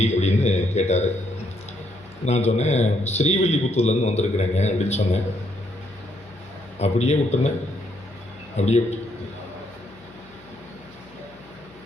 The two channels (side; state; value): left; noise; hum, 26 dB below the sound